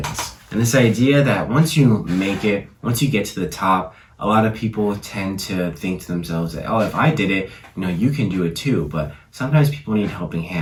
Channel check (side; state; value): both; identical; correlation 1.00